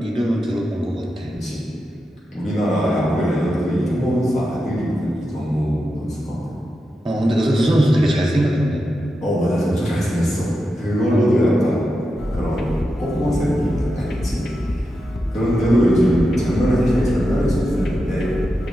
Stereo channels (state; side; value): normal; both; correlation 0.89